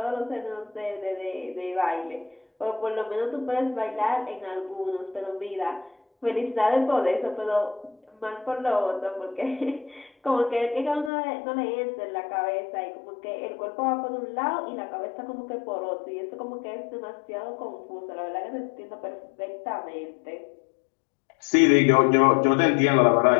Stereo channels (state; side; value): drops out; right; at 11.1 s